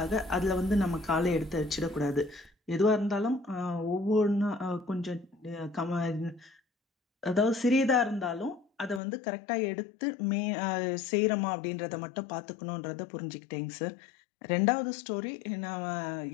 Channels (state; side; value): drops out; right; at 9.0 s